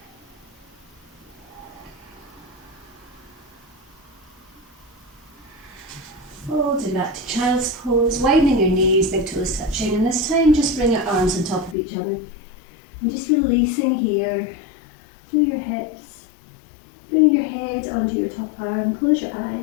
Folding back to child's pose, widening your knees, big toes touching, and this time just bring your arms on top of each other. And just releasing here through your hips, bringing your head onto your top arm, close your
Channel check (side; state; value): right; drops out; at 11.8 s